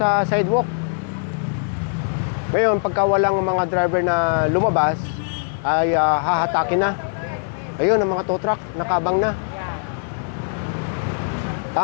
sidewalk. Ngayon, pagka walang mga driver na lumabas, ay hahatakin na. Ayun, ang mga tow truck, nakabang na.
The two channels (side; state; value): right; silent; digital silence